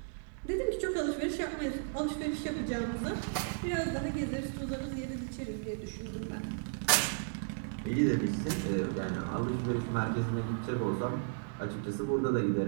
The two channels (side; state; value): left; silent; 55 dB below the other